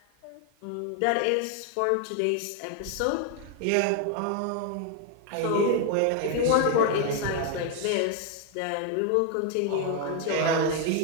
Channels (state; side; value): different; both; correlation 0.01